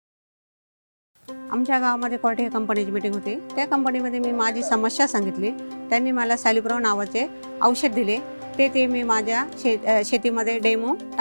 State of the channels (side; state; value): both; inverted; correlation -1.00